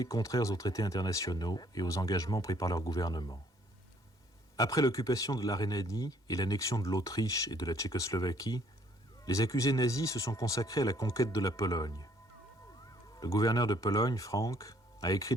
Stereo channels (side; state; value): left; late; 2.1 ms